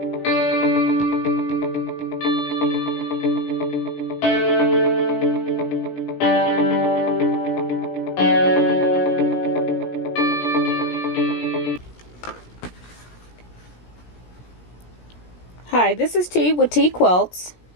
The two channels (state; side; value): late; right; 17 ms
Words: this is T with TeaQuilts,